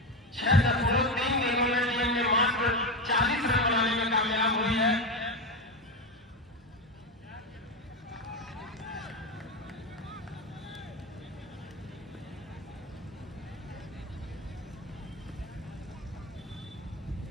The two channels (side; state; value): both; normal; correlation 0.15